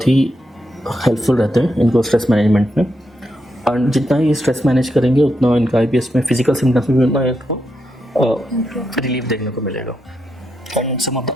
ही हेल्पफुल रहते हैं इनको स्ट्रेस मैनेजमेंट में, और जितना ही स्ट्रेस मैनेज करेंगे उतना इनका IBS में फिजिकल सिम्टम्स में भी उतना इनको रिलीफ देखने को मिलेगा। And some of the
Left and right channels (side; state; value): both; normal; correlation 0.83